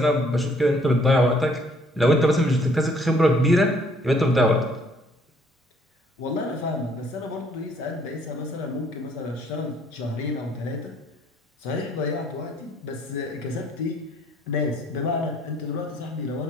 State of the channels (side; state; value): both; normal; correlation 0.62